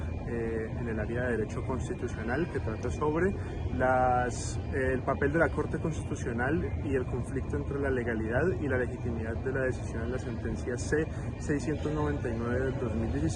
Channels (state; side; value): identical; both; correlation 1.00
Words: en el área de Derecho Constitucional que trata sobre el papel de la Corte Constitucional y el conflicto entre la legalidad y la legitimidad de la decisión en la sentencia C-699 del